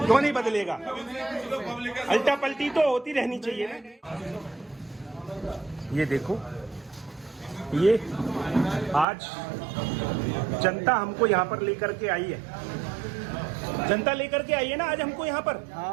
नहीं बदलेगा? अल्टा पलटी तो होती रहनी चाहिए ना। ये देखो, ये आज जनता हमको यहाँ पर लेकर के आई है। जनता लेकर के आई है ना आज हमको यहाँ पर।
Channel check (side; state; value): left; drops out; at 9.1 s